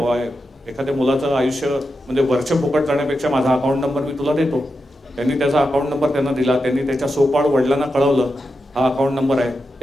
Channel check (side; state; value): both; normal; correlation 0.88